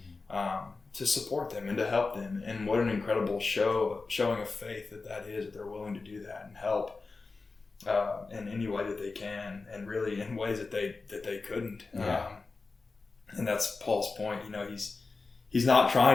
to support them and to help them. And what an incredible showing of faith that is, that they're willing to do that and help in any way that they can, and really in ways that they couldn't. And that's Paul's point. He's not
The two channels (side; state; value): right; quieter; 4.0 dB